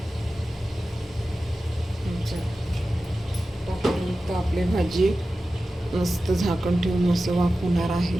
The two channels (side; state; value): both; normal; correlation 0.94